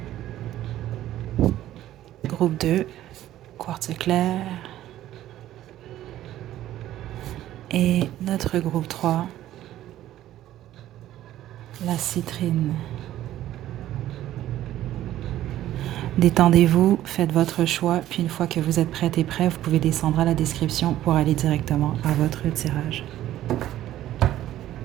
Groupe 2, quartz clair. Et notre groupe 3, la citrine. Détendez-vous, faites votre choix, puis une fois que vous êtes prête et prêt, vous pouvez descendre à la description pour aller directement à votre tirage.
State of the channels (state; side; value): quieter; left; 13.4 dB